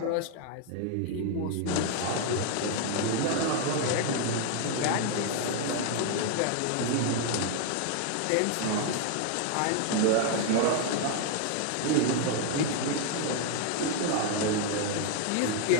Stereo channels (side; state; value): both; different; correlation 0.00